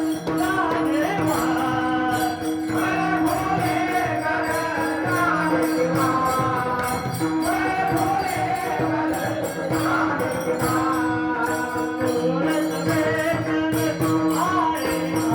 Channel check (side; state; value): both; identical; correlation 1.00